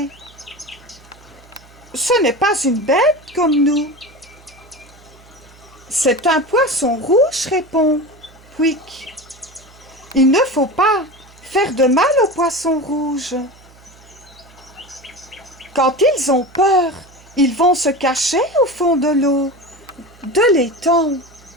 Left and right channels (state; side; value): noise; right; hum, 25 dB below the sound